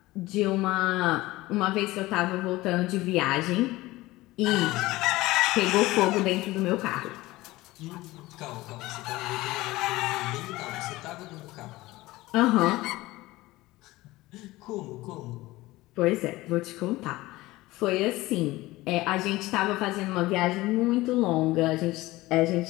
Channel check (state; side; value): quieter; right; 18.9 dB